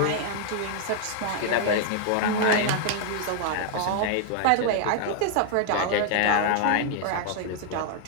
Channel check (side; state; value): both; different; correlation 0.00